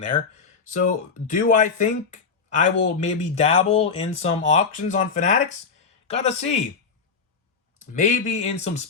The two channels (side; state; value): right; quieter; 5.3 dB